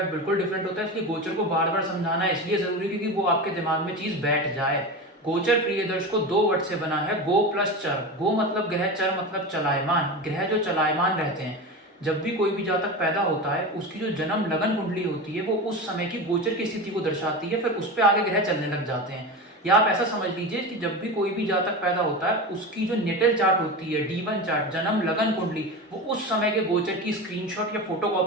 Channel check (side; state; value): both; normal; correlation 0.25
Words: बिल्कुल डिफरेंट होता है। इसलिए गोचर को बार बार समझाना इसलिए जरूरी है क्योंकि वो आपके दिमाग में चीज बैठ जाए। गोचर प्रिय दर्शकों 2 वर्ड से बना है, गो प्लस चर। गो मतलब ग्रह, चर मतलब चलायमान। ग्रह जो चलायमान रहते हैं, जब भी कोई भी जातक पैदा होता है उसकी जो जन्म लगन कुंडली होती है वो उस समय की गोचर की स्थिति को दर्शाती है, फिर उस पर आगे ग्रह चलने लग जाते हैं। या आप ऐसा समझ लीजिए कि जब भी कोई भी जातक पैदा होता है उसकी जो नेटल चार्ट होती है, D1 चार्ट, जन्म लगन कुंडली, वो उस समय के गोचर की स्क्रीनशॉट या